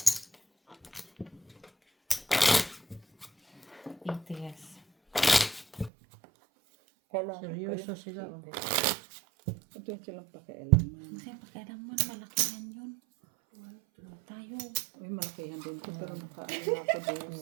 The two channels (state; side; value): drops out; left; at 5.9 s